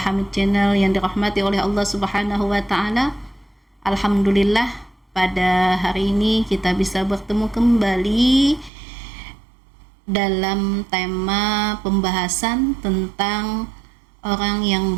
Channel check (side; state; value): left; drops out; at 8.7 s